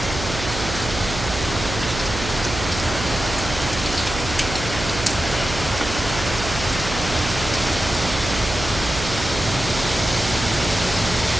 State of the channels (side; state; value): right; noise; hum, 7 dB below the sound